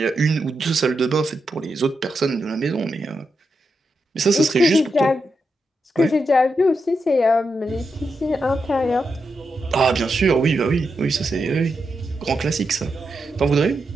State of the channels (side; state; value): both; normal; correlation 0.86